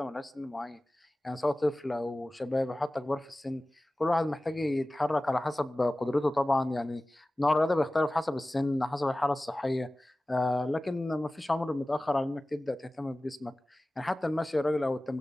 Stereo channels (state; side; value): normal; both; correlation 0.97